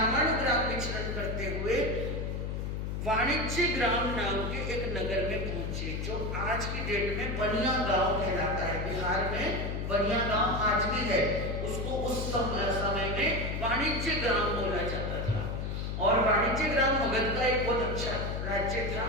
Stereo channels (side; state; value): left; noise; hum, 3 dB below the sound